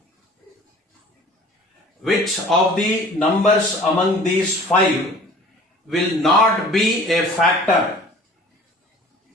which of the numbers among these five will not be a factor?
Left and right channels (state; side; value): normal; both; correlation 0.47